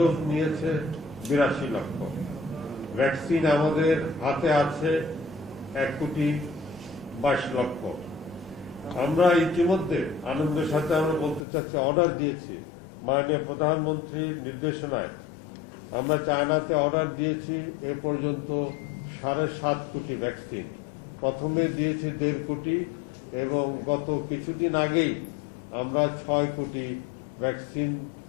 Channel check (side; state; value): right; drops out; at 11.5 s